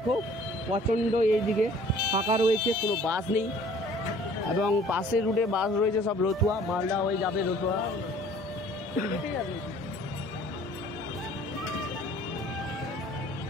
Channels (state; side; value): normal; both; correlation 0.53